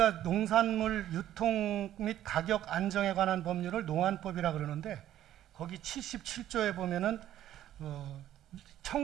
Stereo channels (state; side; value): quieter; left; 12.3 dB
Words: 농산물 유통 및 가격 안정에 관한 법률을 농안법이라 그러는데, 거기 77조에 보면은